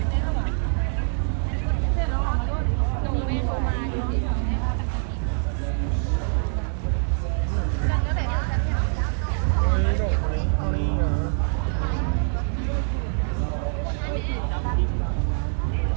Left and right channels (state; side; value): silent; left; 57 dB below the other